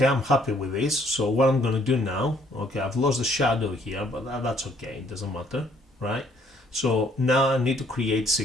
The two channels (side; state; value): both; normal; correlation 0.64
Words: I'm happy with this. So what I'm going to do now, okay, I've lost the shadow here, but that's okay, it doesn't matter, right? So now I need to create